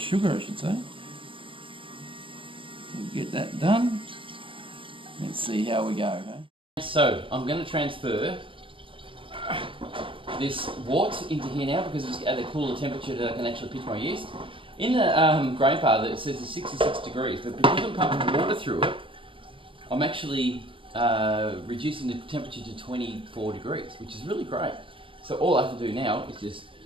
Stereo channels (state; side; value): late; left; 0.25 ms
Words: sugar I should say. We'll get that done. Let's see how we go. Okay? So I'm going to transfer this wort into here now because it's at a cooler temperature that I can actually pitch my yeast. In the Grainfather it says it's 66 degrees, but because I'm pumping water through it, I'm actually reducing the temperature to 24 degrees, which is really great. So all I have to do now is just